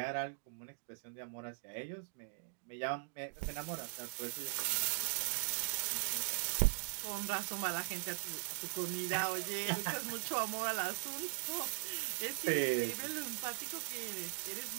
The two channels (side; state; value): left; silent; digital silence